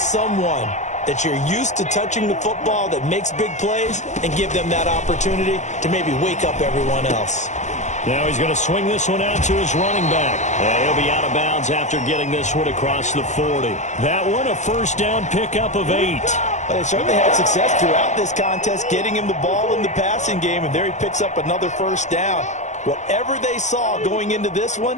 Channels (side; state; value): right; late; 0.34 ms